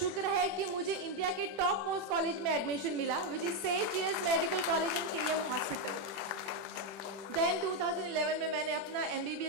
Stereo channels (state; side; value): late; left; 21 ms